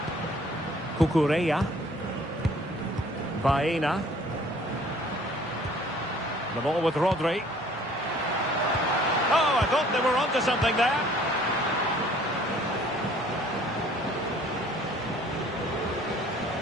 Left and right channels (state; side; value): normal; both; correlation 0.55